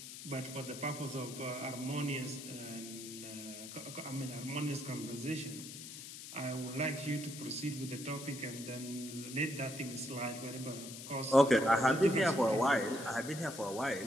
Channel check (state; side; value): noise; left; hiss, 11 dB below the sound